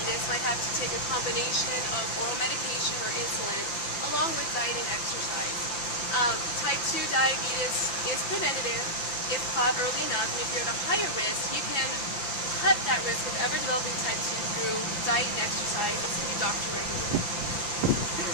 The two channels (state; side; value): late; right; 5.9 ms